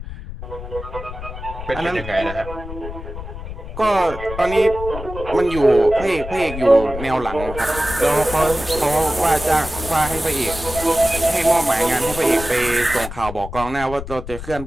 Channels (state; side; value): noise; left; rumble, 10 dB below the sound